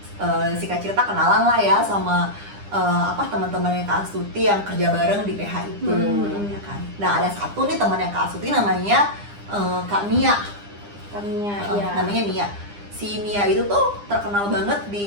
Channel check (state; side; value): late; left; 9.9 ms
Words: si Kak Cirta kenalan lah ya sama teman-temannya Kak Astuti yang kerja bareng di PH itu, ya kan. Nah ada satu nih temannya Kak Astuti namanya Kak Mia. Kaminya, Namanya Mia. Si Mia itu tuh terkenal banget